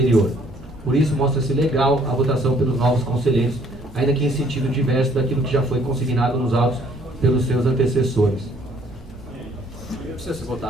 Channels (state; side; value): normal; both; correlation 0.62